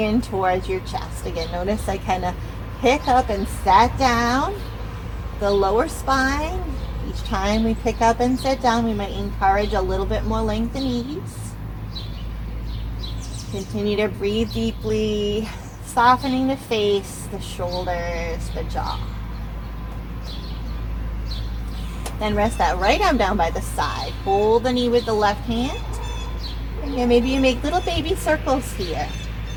in towards your chest. Again, notice I kind of pick up and sat down. The lower spine. Each time we pick up and sit down, we might encourage a little bit more length and ease. Continue to breathe deeply, softening the face, the shoulders, the jaw. Then rest that right arm down by the side. Hold the knee with the left hand. And maybe you make little baby circles here.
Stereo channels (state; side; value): identical; both; correlation 1.00